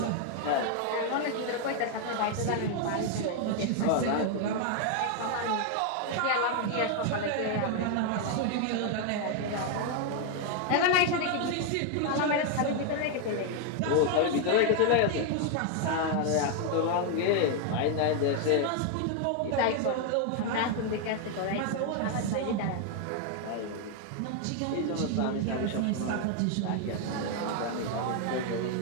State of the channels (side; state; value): both; different; correlation 0.00